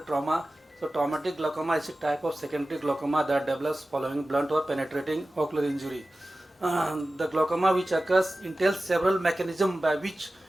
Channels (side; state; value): both; normal; correlation 0.95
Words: So traumatic glaucoma is a type of secondary glaucoma that develops following blunt or penetrating ocular injury. The glaucoma which occurs entails several mechanisms by which